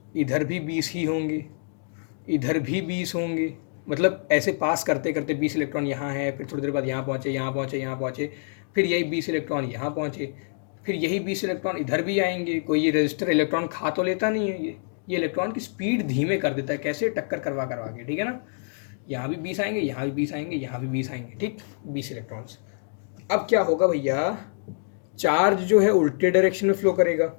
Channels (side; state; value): right; silent; digital silence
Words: इधर भी 20 ही होंगे, इधर भी 20 होंगे, मतलब ऐसे पास करते करते 20 इलेक्ट्रॉन यहाँ है, फिर थोड़ी देर बाद यहाँ पहुँचे, यहाँ पहुँचे, यहाँ पहुँचे, फिर यही 20 इलेक्ट्रॉन यहाँ पहुँचे, फिर यही 20 इलेक्ट्रॉन इधर भी आएंगे। कोई ये रजिस्टर इलेक्ट्रॉन खा तो लेता नहीं है, ये इलेक्ट्रॉन की स्पीड धीमे कर देता है, कैसे, टक्कर करवा करवा के, ठीक है ना। यहाँ भी 20 आएंगे, यहाँ भी 20 आएंगे, यहाँ भी 20 आएंगे, ठीक, 20 इलेक्ट्रॉन्स। अब क्या होगा भैया, चार्ज जो है उल्टे डायरेक्शन में फ्लो करेगा,